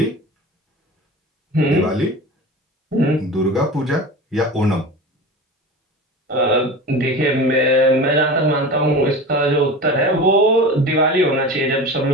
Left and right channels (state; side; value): normal; both; correlation 0.32